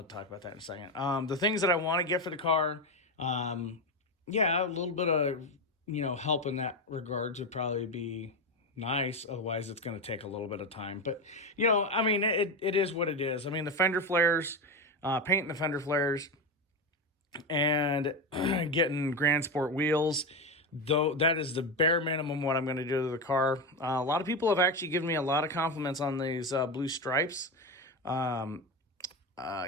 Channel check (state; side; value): normal; both; correlation 0.15